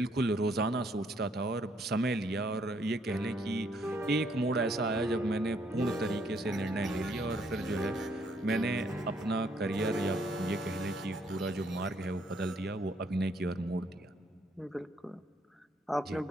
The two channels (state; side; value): normal; both; correlation 0.69